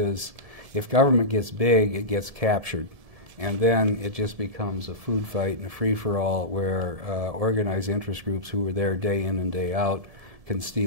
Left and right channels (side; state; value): left; late; 1.7 ms